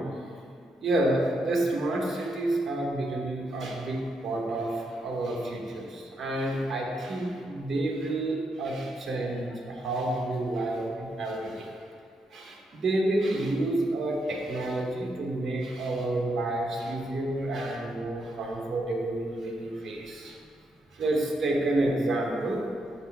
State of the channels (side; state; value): both; normal; correlation 0.80